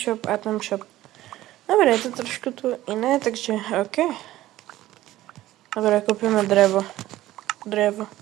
item shop. Dobre, je to trošku tu iné, takže OK. Dobre, kúpime drevo.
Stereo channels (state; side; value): quieter; left; 15.2 dB